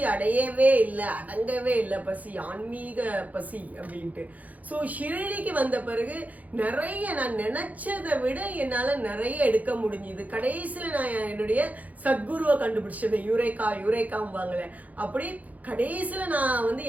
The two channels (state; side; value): late; left; 0.076 ms